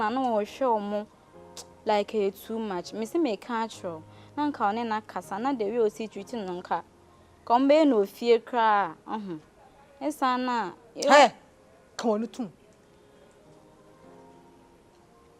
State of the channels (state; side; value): identical; both; correlation 1.00